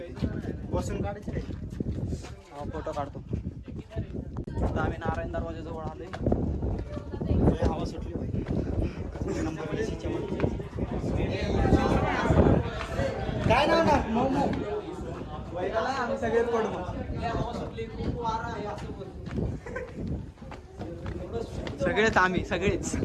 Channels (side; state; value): both; identical; correlation 1.00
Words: बसून काढायचे रे. हा फोटो काढतो. आता आम्ही नारायण दरवाजाजवळ आलोय. हवा सुटली पाहिजे. नंबर प्लेटच्या मध्ये. काय नाव ना मोमो. आम्ही सगळेच पडू मग. सगळेच आम्ही सगळेच.